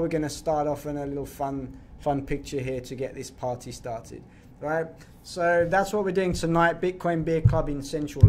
we're going to start off in a little fun picture here to get this party started, right? So that's what we're doing tonight, Bitcoin Beer Club in central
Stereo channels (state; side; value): identical; both; correlation 1.00